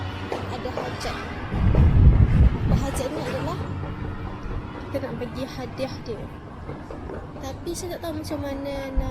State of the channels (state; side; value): identical; both; correlation 1.00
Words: ada hajat. Hajat ni adalah kita nak bagi hadiah dia. Tapi saya tak tahu macam mana